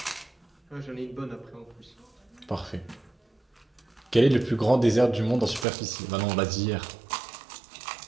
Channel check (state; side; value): drops out; left; at 5.7 s